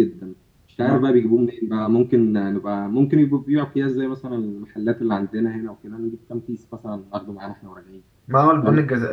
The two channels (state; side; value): identical; both; correlation 1.00